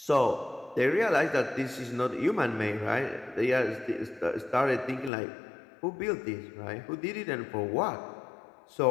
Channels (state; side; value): drops out; right; at 5.1 s